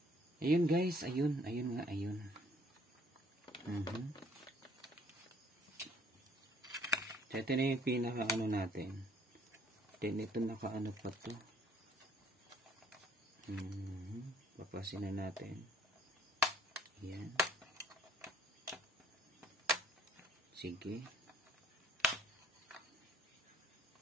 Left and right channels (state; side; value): normal; both; correlation 0.60